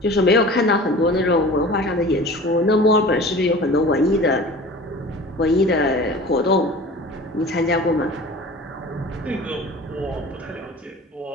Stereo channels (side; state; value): both; normal; correlation 0.40